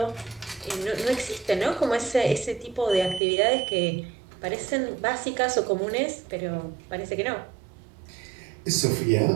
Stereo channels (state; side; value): drops out; left; at 3.2 s